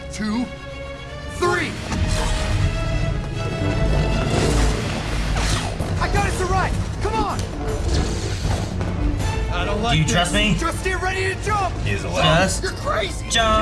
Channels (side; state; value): both; identical; correlation 1.00